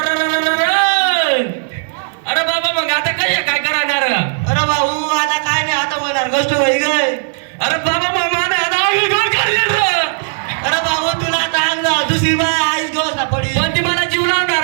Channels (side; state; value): left; silent; digital silence